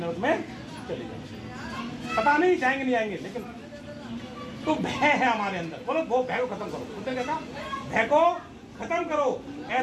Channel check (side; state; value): both; identical; correlation 1.00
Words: में चले जाओ, पता नहीं जाएंगे नहीं आएंगे, लेकिन तो भय है हमारे अंदर। बोलो वो भय को खत्म करो। उसने कहा भय को खत्म करो।